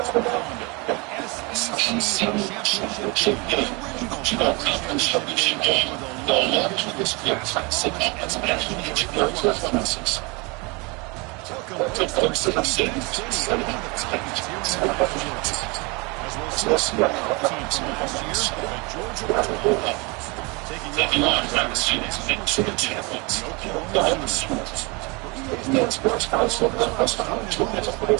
calendar. SEC championship game. The original conference championship game with a long history of success. All its education Welcome to Mercedes-Benz Stadium, one of the Falcons here in Atlanta, Georgia. As we'll see a small team from last year, the Georgia Bulldogs, taking on last year's national champions, the Oklahoma Sooners. For EA Sports Council, let's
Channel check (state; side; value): quieter; left; 28.5 dB